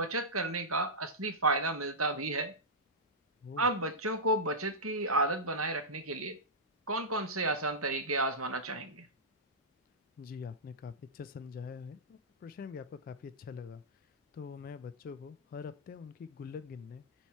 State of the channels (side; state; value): both; normal; correlation -0.12